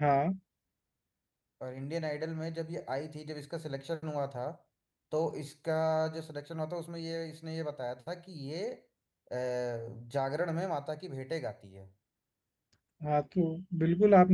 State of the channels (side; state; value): both; identical; correlation 1.00